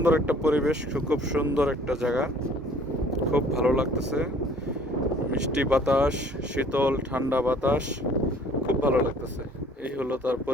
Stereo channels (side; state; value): both; normal; correlation 0.54